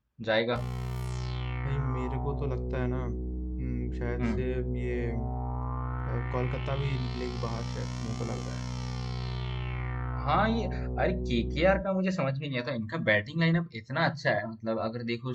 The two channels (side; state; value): both; identical; correlation 1.00